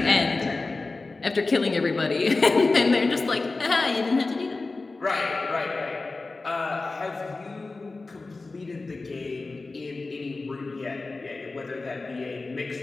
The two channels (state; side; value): quieter; right; 3.5 dB